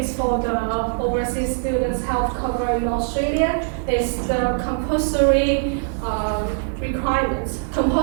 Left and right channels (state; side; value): silent; left; 64 dB below the other